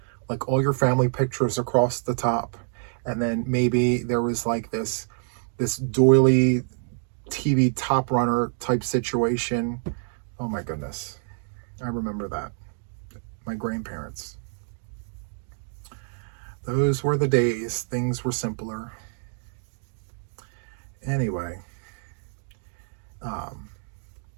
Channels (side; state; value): left; silent; digital silence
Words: like all your family pictures across the top. And then maybe there was like this doily TV top runner type situation. Oh my goodness. I remember that. My grandparents. Those were the days. Things were simpler. Anyway,